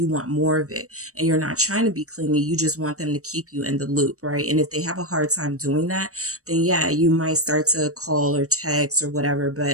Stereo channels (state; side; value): late; left; 0.65 ms